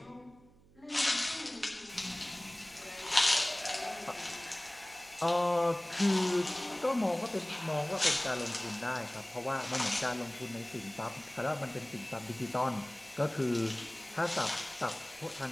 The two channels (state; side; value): noise; right; hum, 27 dB below the sound